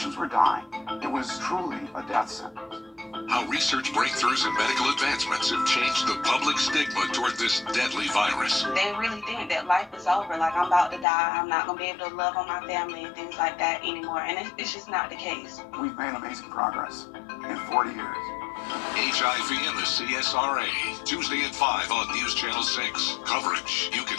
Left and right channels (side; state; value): right; drops out; at 11.1 s